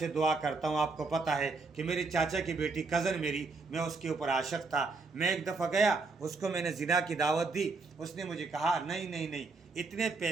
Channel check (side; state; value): left; quieter; 4.0 dB